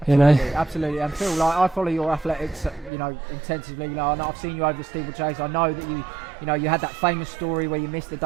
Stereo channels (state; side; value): drops out; left; at 2.9 s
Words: Absolutely. And Phil, I follow your athletics, intensively. I've seen you over the steeplechase. I know that you had that famous story where you missed the